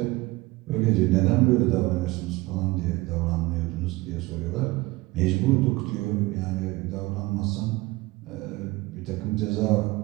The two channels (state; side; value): quieter; left; 20.9 dB